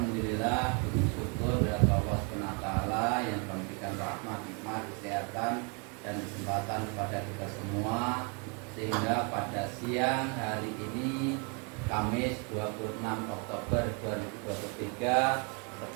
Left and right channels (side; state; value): left; quieter; 34.9 dB